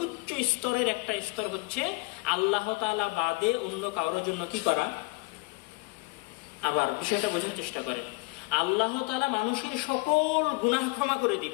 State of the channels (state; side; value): quieter; right; 27.1 dB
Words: স্তরের একটা স্তর হচ্ছে আল্লাহ তাআলা বাদে অন্য কারোর জন্য কি করা। আবার বিষয়টা বোঝার চেষ্টা করেন, আল্লাহ তাআলা মানুষের সকল গুনাহ ক্ষমা করে